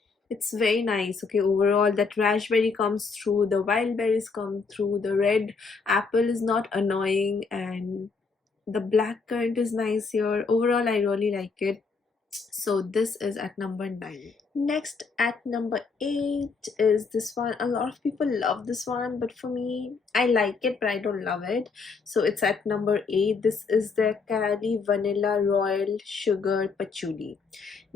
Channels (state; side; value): quieter; right; 4.7 dB